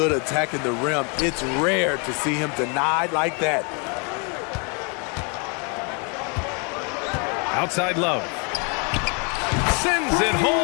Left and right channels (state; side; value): quieter; right; 35.1 dB